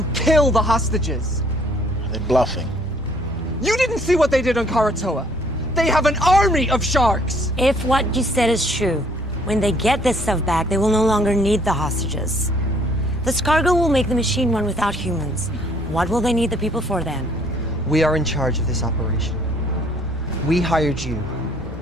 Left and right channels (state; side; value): normal; both; correlation 0.61